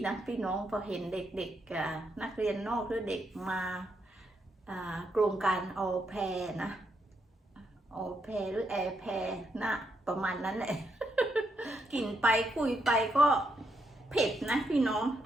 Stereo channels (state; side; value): normal; both; correlation 0.79